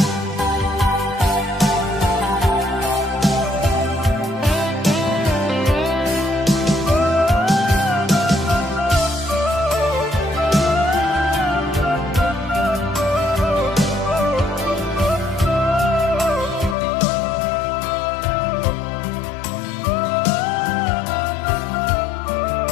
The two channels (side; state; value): right; drops out; at 16.8 s